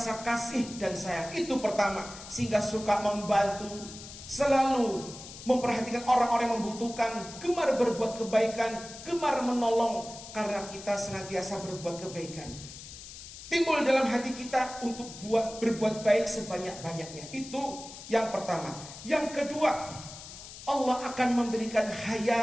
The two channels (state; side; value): noise; left; hiss, 14 dB below the sound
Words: kasih dan sayang. Itu pertama, sehingga suka membantu, selalu memperhatikan orang-orang yang membutuhkan, gemar berbuat kebaikan, gemar menolong, karena kita senantiasa berbuat kebaikan. Timbul dalam hati kita untuk berbuat baik sebanyak-banyaknya. Itu yang pertama. Yang kedua, Allah akan memberikan